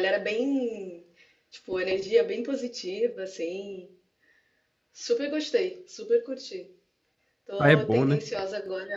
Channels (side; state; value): both; identical; correlation 1.00